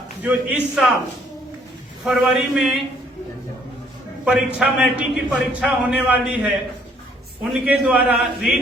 जो इस साल फरवरी में परीक्षा, मैट्रिक की परीक्षा होने वाली है, उनके द्वारा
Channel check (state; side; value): normal; both; correlation 0.64